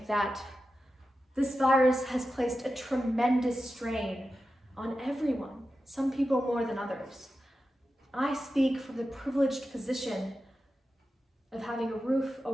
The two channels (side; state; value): both; normal; correlation 0.92